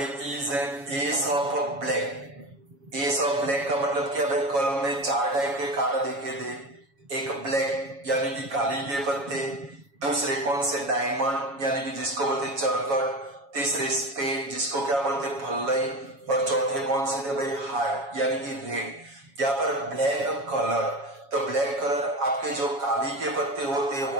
is an S of black. S of black का मतलब क्या भाई, कॉलम में 4 टाइप के कार्ड देखे थे, एक ब्लैक यानी कि काली के पत्ते, दूसरे कौन से डायमंड यानी कि जिसको बोलते चरकट, तीसरे स्पेड जिसको क्या बोलते फल्लई, और चौथे कौन से थे भाई हार्ट यानी कि रेड। यहाँ पर ब्लैक कलर, तो ब्लैक कलर आपके जो काली के पत्ते होते हैं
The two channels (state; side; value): late; left; 7.2 ms